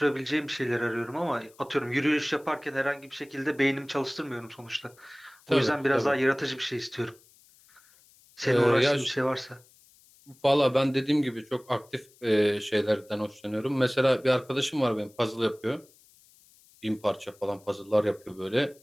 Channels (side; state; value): left; noise; hiss, 28 dB below the sound